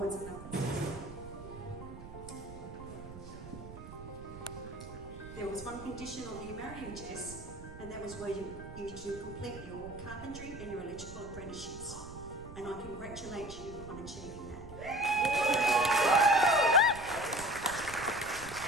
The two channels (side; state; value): right; noise; rumble, 13 dB below the sound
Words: and upwards. There was one condition on you marrying Jess, and that was where you to complete your carpentry and your electrical apprenticeships. And I congratulate you on achieving that.